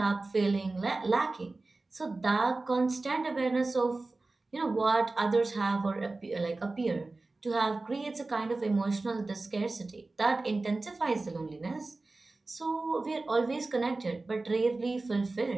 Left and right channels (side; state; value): left; quieter; 3.3 dB